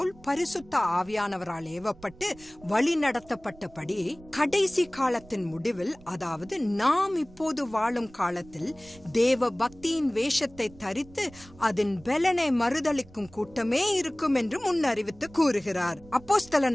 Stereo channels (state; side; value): noise; right; rumble, 23 dB below the sound